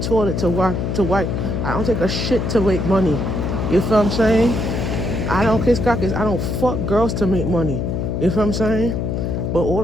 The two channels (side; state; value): left; noise; hum, 1 dB below the sound